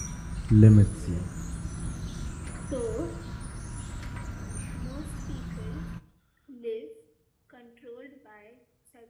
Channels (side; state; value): both; identical; correlation 1.00